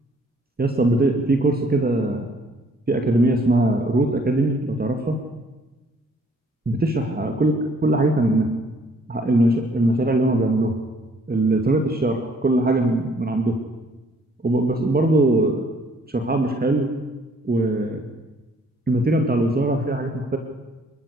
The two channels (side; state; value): both; normal; correlation 0.61